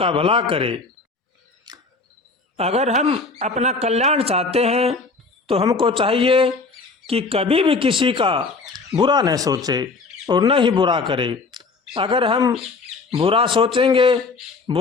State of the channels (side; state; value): right; quieter; 4.0 dB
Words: भला करे। अगर हम अपना कल्याण चाहते हैं तो हमको चाहिए कि कभी भी किसी का बुरा न सोचे और न ही बुरा करे। अगर हम बुरा सोचेंगे,